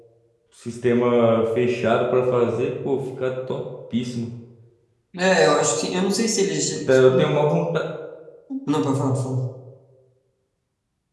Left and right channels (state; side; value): identical; both; correlation 1.00